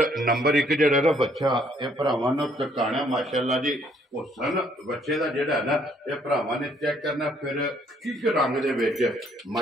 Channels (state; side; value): normal; both; correlation 0.65